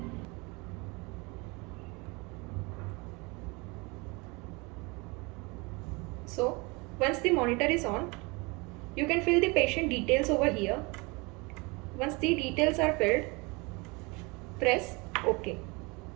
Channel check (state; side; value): quieter; left; 27.2 dB